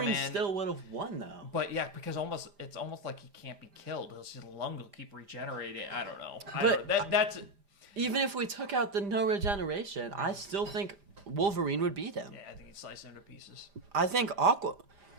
Aquaman- still would have won though. But yeah, because it's almost like he can't be killed. His lung will keep regenerating. I don't know. But- that's Even if we took out the no regeneration, I still think Wolverine would beat him. yeah. I think he'd slice him to pieces. I think Aquaman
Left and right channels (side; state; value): left; late; 5.0 ms